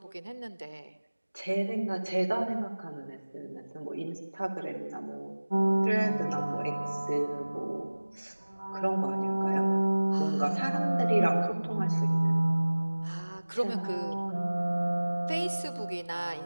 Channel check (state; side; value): inverted; both; correlation -1.00